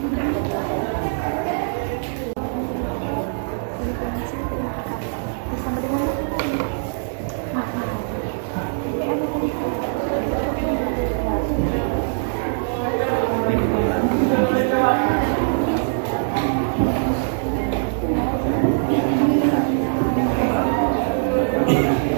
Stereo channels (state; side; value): silent; left; digital silence